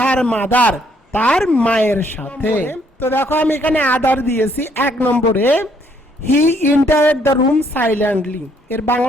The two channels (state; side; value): normal; both; correlation 0.68